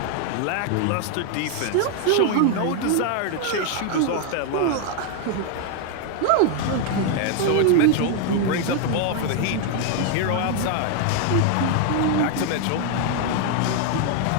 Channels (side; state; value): both; different; correlation 0.00